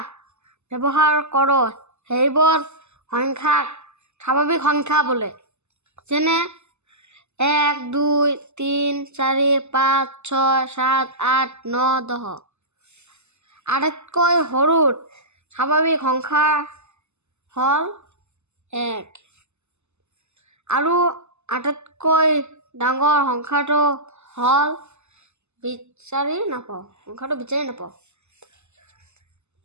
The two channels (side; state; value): left; late; 0.82 ms